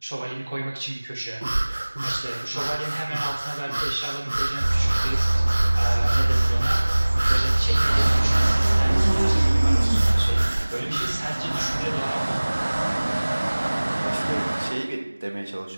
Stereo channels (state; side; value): inverted; both; correlation -1.00